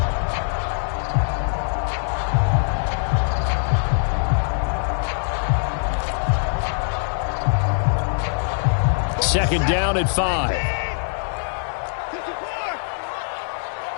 Second down and 5.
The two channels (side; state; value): right; silent; digital silence